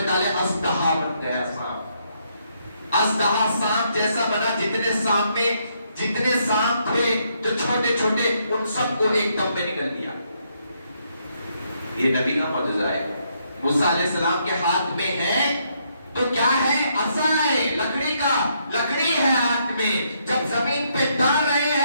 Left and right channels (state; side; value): inverted; both; correlation -0.74